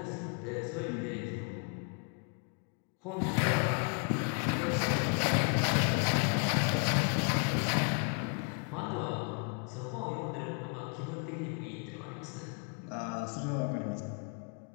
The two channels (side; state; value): right; quieter; 39.4 dB